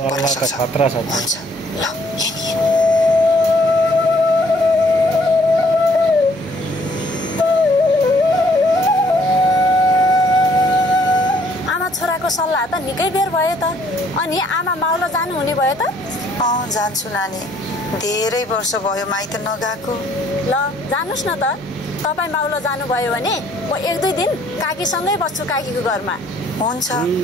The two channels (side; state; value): both; normal; correlation 0.63